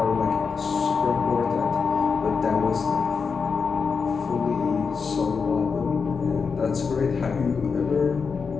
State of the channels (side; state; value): right; quieter; 5.4 dB